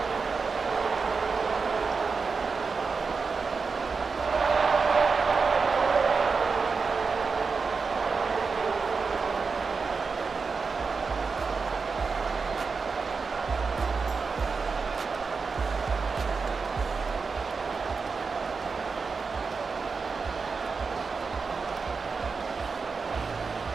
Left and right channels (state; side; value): quieter; left; 4.8 dB